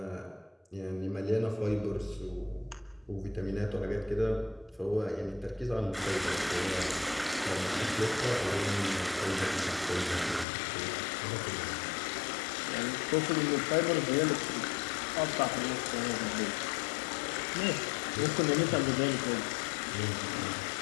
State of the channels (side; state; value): right; drops out; at 10.5 s